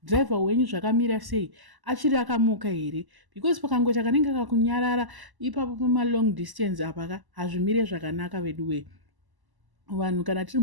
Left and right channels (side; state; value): left; late; 1.0 ms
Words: driver wenyu zvakamira sei achiri akamuka here, because pakangoita kanenge kakunyarara ipapo pama long distance apa hazvimire zvakanaka veduwe. Vanhu kana tiri